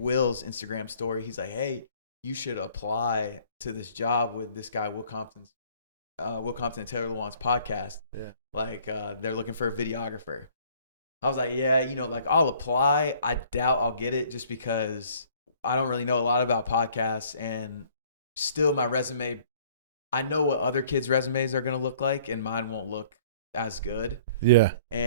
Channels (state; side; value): inverted; both; correlation -0.56